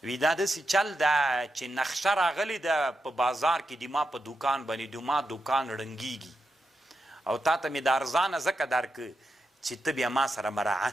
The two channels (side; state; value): both; normal; correlation 0.87